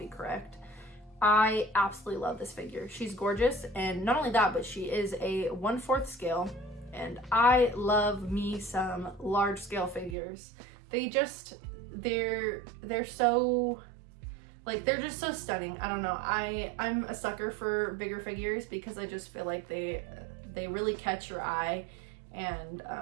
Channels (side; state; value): left; drops out; at 10.2 s